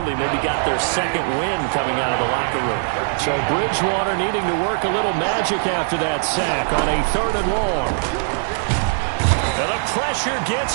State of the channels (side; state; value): left; silent; 65 dB below the other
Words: Maybe got their 2nd win coming out of the locker room. So Bridgewater needing to work a little magic after that sack on a 3rd and long. And the pressure